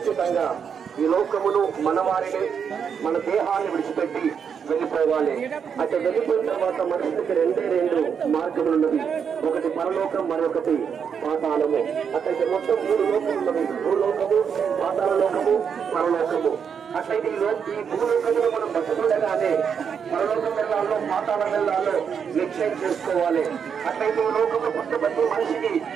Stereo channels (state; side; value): quieter; left; 7.1 dB